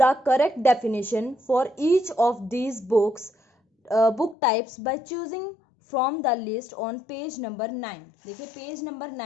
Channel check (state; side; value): drops out; right; at 4.4 s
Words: correct definition for each of these books book types by choosing from the list on page number 9। देखिए पेज नंबर